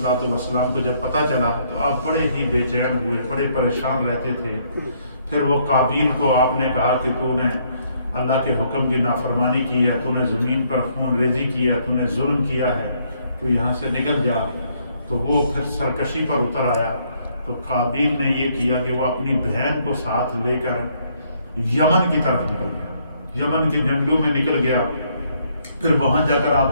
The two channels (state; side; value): inverted; both; correlation -0.69